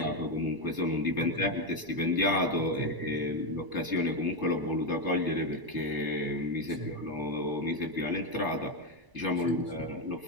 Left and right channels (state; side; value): late; left; 1.0 ms